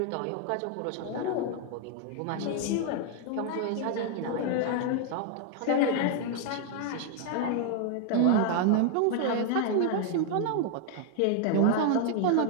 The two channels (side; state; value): both; different; correlation 0.00